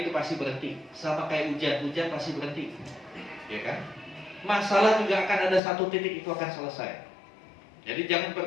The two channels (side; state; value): right; drops out; at 5.6 s